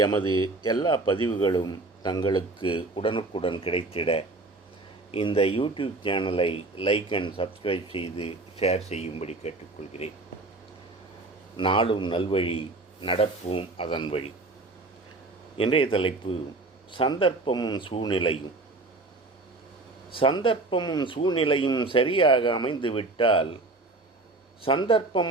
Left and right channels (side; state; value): left; quieter; 3.2 dB